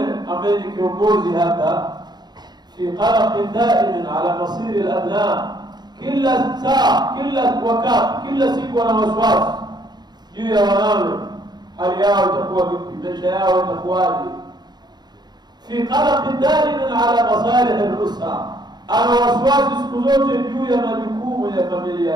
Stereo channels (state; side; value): late; left; 0.20 ms